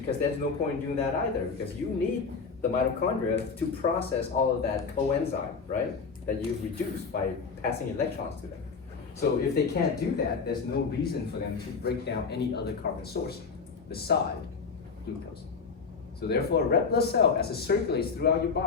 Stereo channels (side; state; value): right; quieter; 5.1 dB